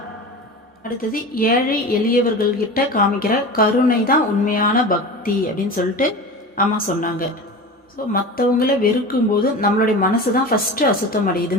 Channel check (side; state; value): both; normal; correlation 0.31